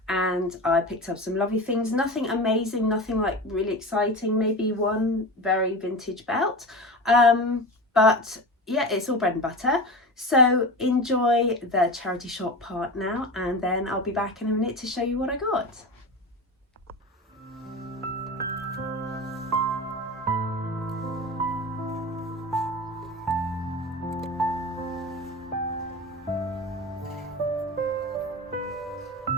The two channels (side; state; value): both; normal; correlation 0.28